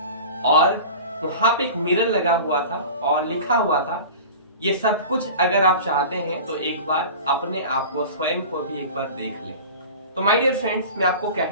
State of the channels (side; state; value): both; inverted; correlation -0.37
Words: और वहां पे एक मिरर लगा हुआ था और लिखा हुआ था, ये सब कुछ अगर आप चाहते हैं तो एक बार अपने आप को स्वयं को भी एक बार देख लें। तो माय डियर फ्रेंड्स, मैं आपको